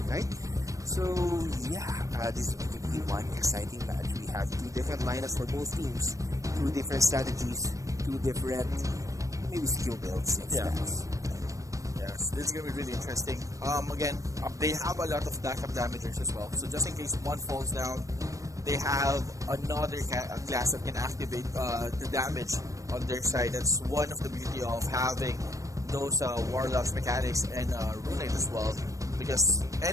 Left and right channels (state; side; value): late; left; 0.16 ms